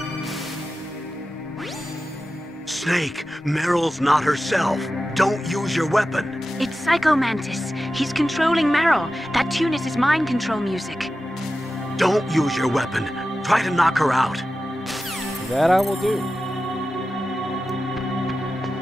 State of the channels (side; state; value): both; normal; correlation 0.93